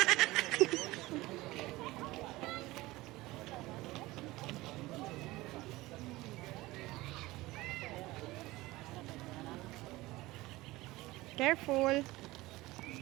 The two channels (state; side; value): quieter; left; 19.4 dB